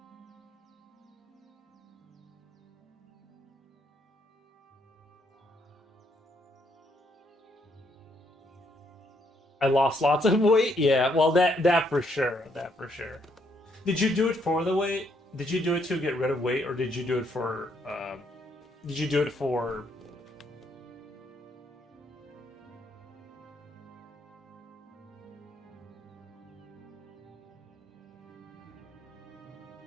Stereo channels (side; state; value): both; normal; correlation 0.73